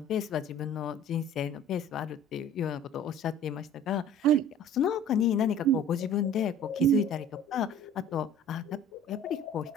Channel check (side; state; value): both; normal; correlation 0.47